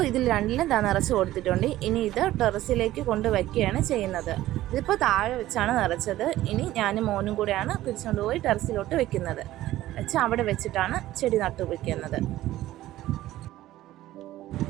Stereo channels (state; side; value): quieter; left; 15.0 dB